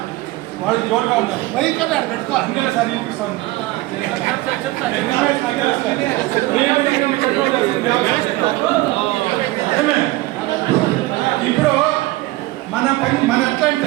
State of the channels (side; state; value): left; quieter; 19.1 dB